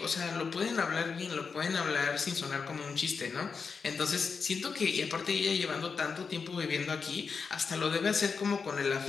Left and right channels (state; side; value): quieter; right; 5.4 dB